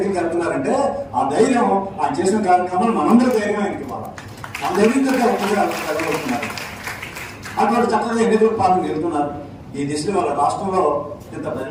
వెళ్తున్నారంటే ఆ ధైర్యం ఆ చేసిన కార్యక్రమాలు మనందరూ ధైర్యం ఆయనకి ఇవ్వాలి. మన ధైర్యంతో ఒక్కరిగా కలగలుగుతున్నారు. అటువంటి చక్కగా ఎన్నికల పాలన వెళ్తున్నారు. ఈ దిశలో వాళ్ళ రాష్ట్రంలో ఇంత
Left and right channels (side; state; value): both; identical; correlation 1.00